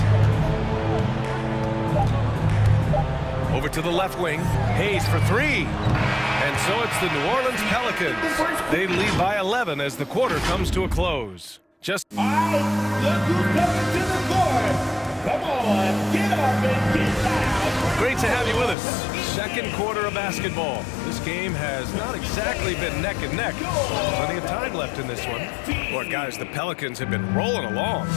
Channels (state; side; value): drops out; right; at 18.8 s